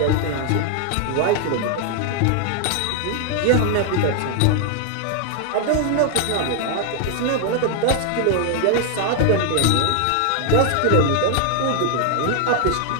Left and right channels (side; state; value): both; different; correlation 0.00